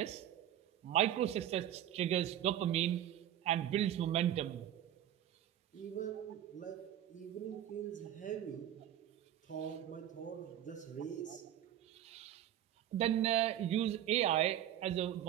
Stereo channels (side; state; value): left; quieter; 11.4 dB